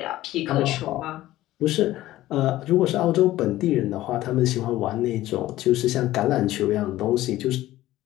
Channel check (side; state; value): right; quieter; 15.5 dB